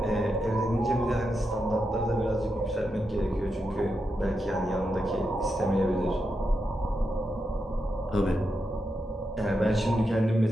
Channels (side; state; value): both; normal; correlation 0.86